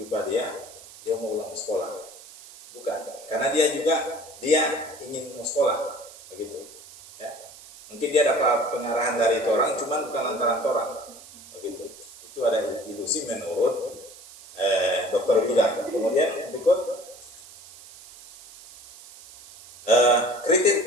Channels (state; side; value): noise; right; hiss, 19 dB below the sound